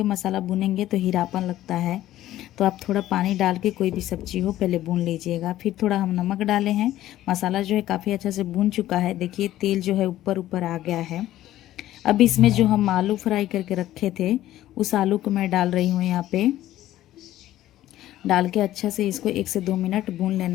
मसाला भुनेंगे तो हीरापन लगता है। तो आप थोड़ा पानी डाल के कोई भी सब्जी हो पहले भून लीजिएगा। फिर थोड़ा हम नमक डाले हैं। मसाला जो है काफ़ी अच्छा से भून चुका है। देखिए तेल जो है ऊपर ऊपर आ गया है। अब इसमें जो हम आलू फ्राई करके रखे थे उस आलू को मैं डाल रही हूँ। यहाँ पे डाल के अच्छा से इसको 1 से 2 मिनट भून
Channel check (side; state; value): right; quieter; 14.0 dB